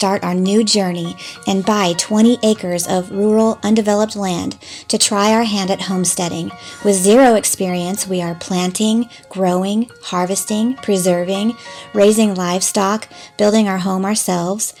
our new journey and buy 20 acres of rural, undeveloped land to try our hand at homesteading. With zero experience, we are planting, growing, harvesting, preserving, raising livestock, building our home ourselves,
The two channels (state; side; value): identical; both; correlation 1.00